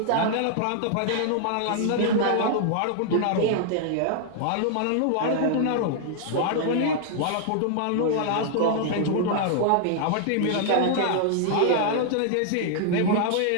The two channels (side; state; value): both; different; correlation -0.01